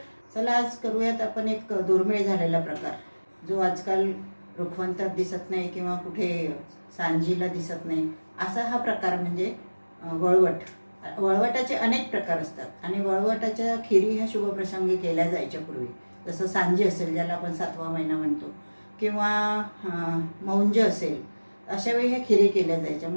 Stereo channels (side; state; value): both; inverted; correlation -1.00